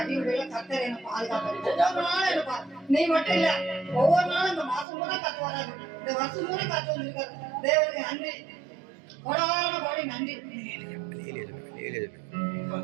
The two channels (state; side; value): drops out; left; at 4.9 s